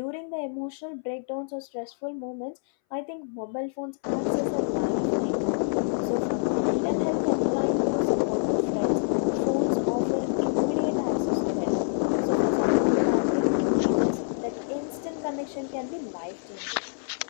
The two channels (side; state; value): right; silent; 60 dB below the other